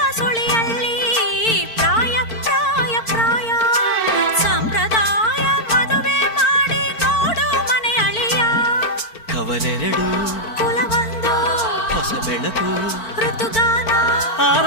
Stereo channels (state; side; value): late; right; 4.5 ms